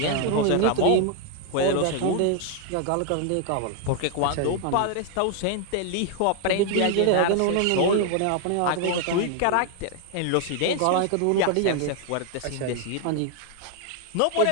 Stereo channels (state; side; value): different; both; correlation 0.00